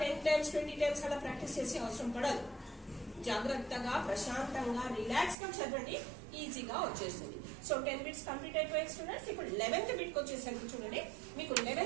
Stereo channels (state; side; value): drops out; left; at 5.4 s